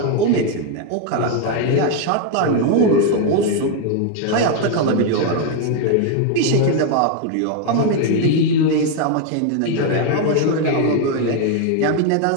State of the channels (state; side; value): different; both; correlation 0.01